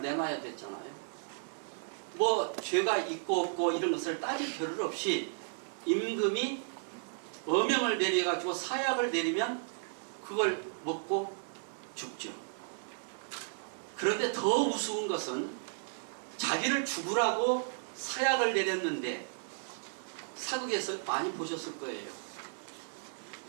내놔야 됐잖아요. 뭐 죄가 있고 없고 이런 것을 따질 필요 없이 임금이 어명을 내려가지고 사약을 내리면 그걸 먹고 죽죠. 그런데 더 우스운 것은 자기를 죽으라고 사약을 내렸는데, 사극에서 많이 보셨을 거예요.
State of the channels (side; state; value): left; silent; 55 dB below the other